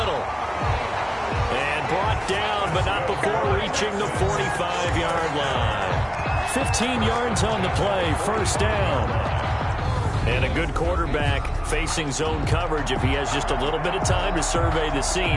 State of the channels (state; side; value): identical; both; correlation 1.00